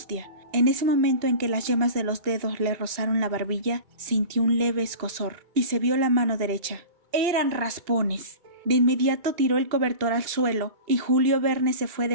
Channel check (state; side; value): late; left; 2.8 ms